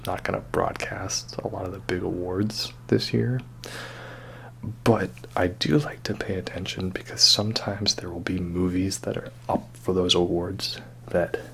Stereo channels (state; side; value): identical; both; correlation 1.00